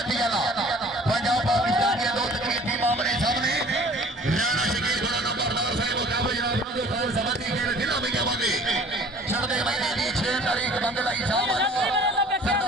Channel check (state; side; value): normal; both; correlation 0.49